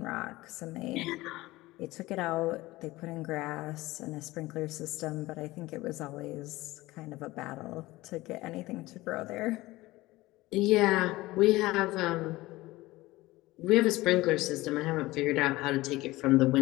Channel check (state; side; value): quieter; right; 19.0 dB